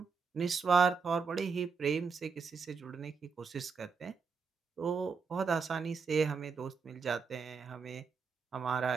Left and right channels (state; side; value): quieter; left; 5.3 dB